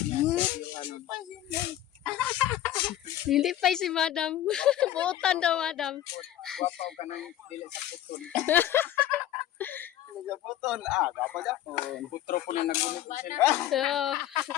niya yung Hindi pa si madam. Buutan daw madam. Gwapaw ka ng dili sa putol. Sa putol. Gapa-gapon. Putro po na nagunit ko sila. So,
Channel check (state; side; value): quieter; right; 12.5 dB